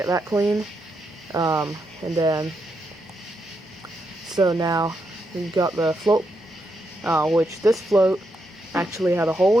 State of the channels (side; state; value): both; normal; correlation 0.82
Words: that clean. And then, so now we've got the float, which this float actually had a